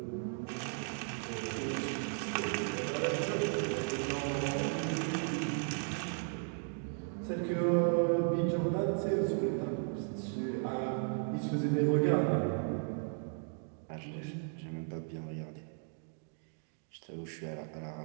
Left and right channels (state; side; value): silent; left; 54 dB below the other